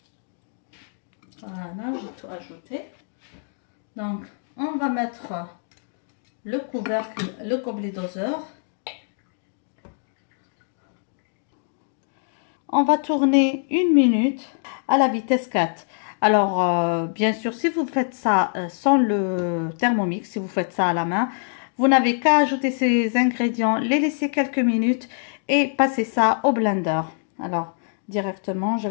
Voilà, j'ai tout ajouté. Donc, on va mettre le couvercle, le gobelet doseur. On va tourner 1 minute à la vitesse 4. Alors, bien sûr, si vous faites ça sans le Thermomix, si vous faites ça à la main, vous n'avez qu'à ajouter ces ingrédients, les laisser quelques minutes et passer ça au blender. Alors, directement, je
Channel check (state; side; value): silent; right; digital silence